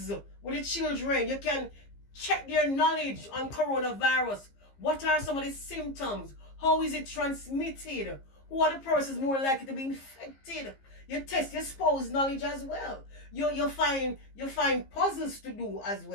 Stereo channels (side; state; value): right; late; 15 ms